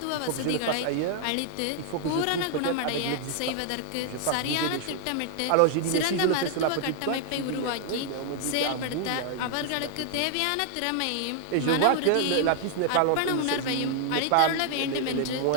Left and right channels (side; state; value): both; different; correlation 0.00